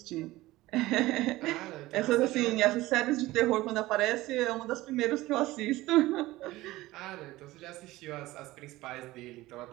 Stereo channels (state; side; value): quieter; left; 18.0 dB